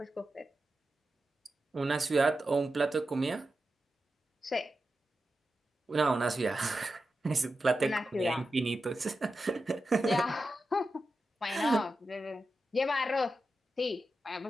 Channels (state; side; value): normal; both; correlation 0.90